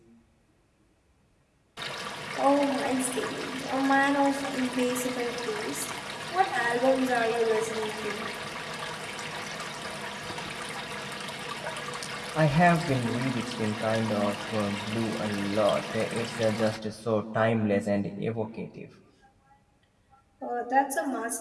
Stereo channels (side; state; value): both; identical; correlation 1.00